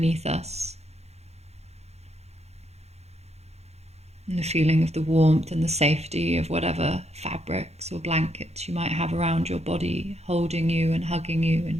us. And the feeling of the warmth and the safety of whatever fabrics or blankets you might have around your body, holding you and hugging you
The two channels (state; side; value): late; left; 0.31 ms